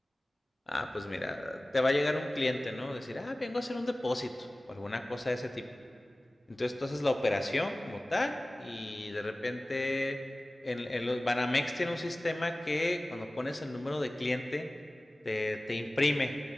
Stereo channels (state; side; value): normal; both; correlation 0.98